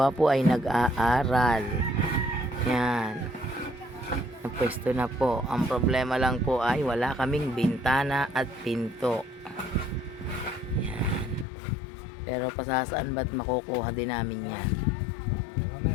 ay nag-aaral. Yan. Napwesto na po. Ang problema lang po ay wala kaming bintana at pinto. Yan. Pero pasasaan ba't makukuha din namin yan.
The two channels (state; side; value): drops out; right; at 11.5 s